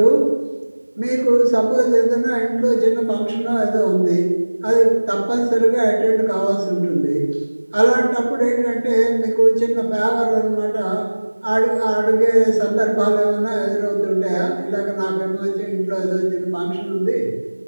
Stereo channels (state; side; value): inverted; both; correlation -1.00